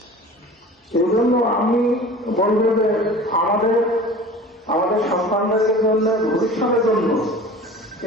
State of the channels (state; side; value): normal; both; correlation 0.40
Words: এই জন্য আমি বলবো যে আমাদের সন্তানদের জন্য, ভবিষ্যতের জন্য